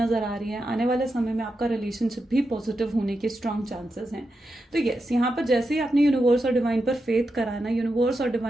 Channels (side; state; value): both; normal; correlation 0.87